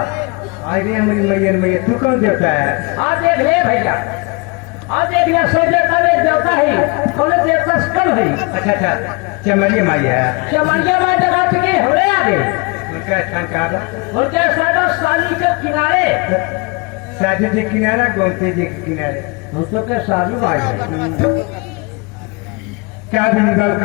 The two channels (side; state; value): right; quieter; 28.1 dB